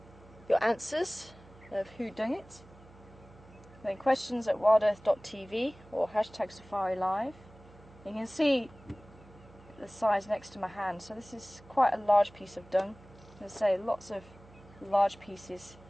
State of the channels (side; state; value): right; noise; hum, 23 dB below the sound